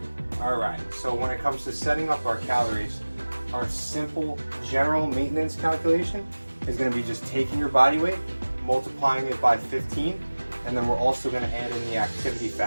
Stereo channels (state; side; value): inverted; both; correlation -1.00